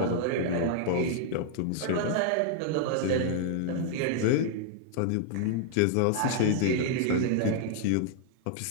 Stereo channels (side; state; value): both; different; correlation -0.01